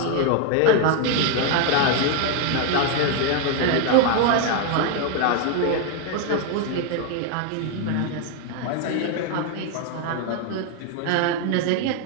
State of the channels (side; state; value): both; different; correlation 0.01